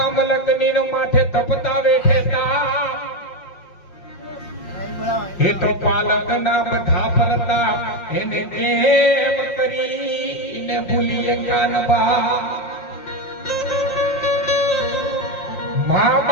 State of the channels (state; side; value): late; right; 5.6 ms